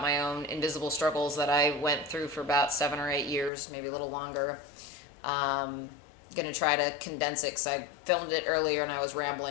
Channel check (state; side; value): drops out; right; at 3.5 s